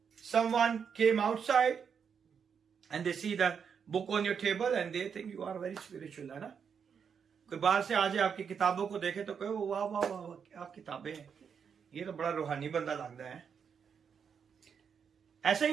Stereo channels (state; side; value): quieter; left; 6.9 dB